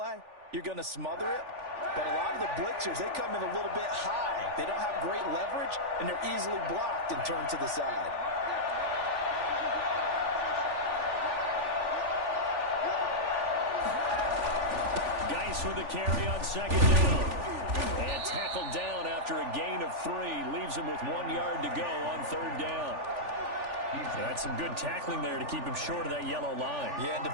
you're going to smother it. But a lot of the blitzers, they come in a little bit high. They don't have great leverage, and they're easily blocked and turned to the side. Geis with the carry on second down. And tackled down after a gain of 3. Leaves him with 1 yard to go on third down. So that's some good tackling there to keep him short of that yellow line. Yeah, and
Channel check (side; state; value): left; late; 3.4 ms